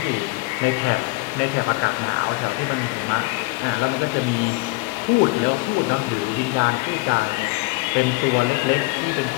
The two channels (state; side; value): quieter; right; 24.1 dB